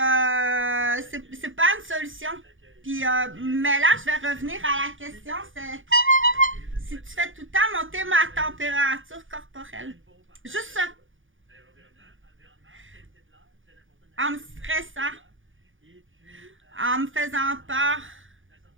pas une solution. Puis, mais là, je vais revenir à la question, c'est si tu fais tout le temps monter ma température corporelle. Juste ça. En me stressant, en me faisant peur,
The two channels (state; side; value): late; left; 0.58 ms